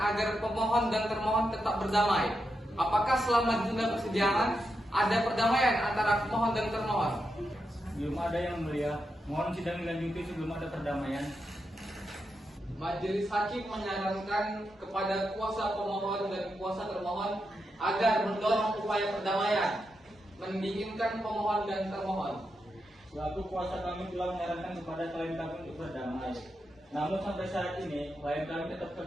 pemohon dan termohon tetap berdamai. Apakah selama ditunda persidangan ada perdamaian antara pemohon dan termohon? Belum ada yang mulia. Mohon sidang dilanjuti sebelum ada perdamaian. Majelis hakim menyarankan kepada kuasa pemohon dan kuasa termohon agar mendorong upaya perdamaian, mendinginkan pemohon dan termohon. Selaku kuasa kami telah menyarankan kepada klien kami untuk berdamai. Namun sampai saat ini, klien kami tetap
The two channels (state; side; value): normal; both; correlation 0.86